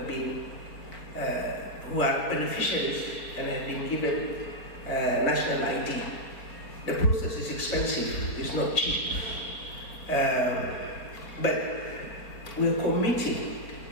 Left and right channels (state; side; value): late; right; 4.5 ms